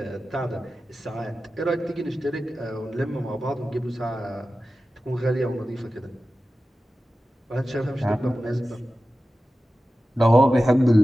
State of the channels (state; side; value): normal; both; correlation 0.94